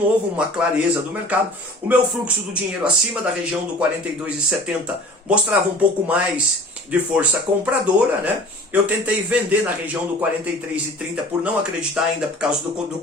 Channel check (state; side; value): normal; both; correlation 0.45